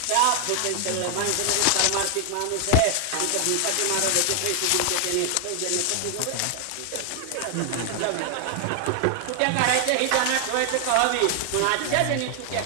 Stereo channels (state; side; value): different; both; correlation 0.00